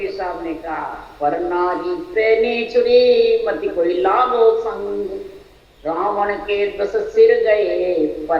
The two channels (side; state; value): both; identical; correlation 1.00